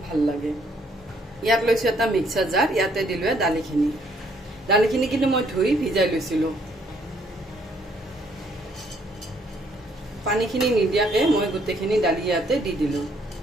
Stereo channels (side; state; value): both; normal; correlation 0.67